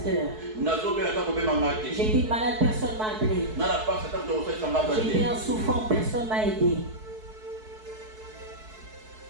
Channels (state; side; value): late; left; 4.6 ms